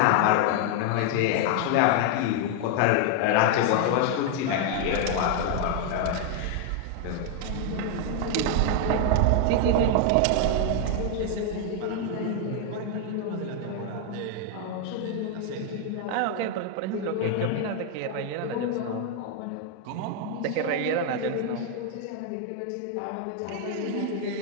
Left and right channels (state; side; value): different; both; correlation 0.00